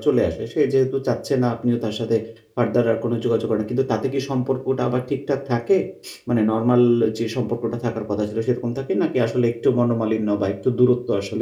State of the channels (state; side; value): identical; both; correlation 1.00